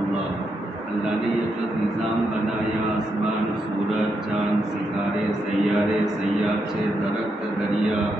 اللہ نے یہ جو نظام بنایا، آسمان، سورج، چاند، ستارے، سیارے، سیارچے، درخت، دریا،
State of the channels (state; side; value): normal; both; correlation 0.81